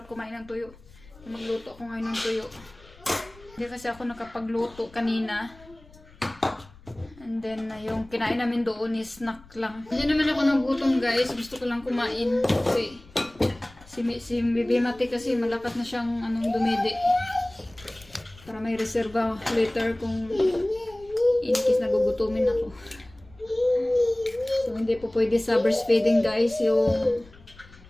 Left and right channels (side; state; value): left; noise; rumble, 24 dB below the sound